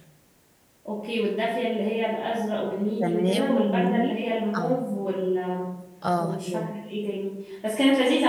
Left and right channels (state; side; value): identical; both; correlation 1.00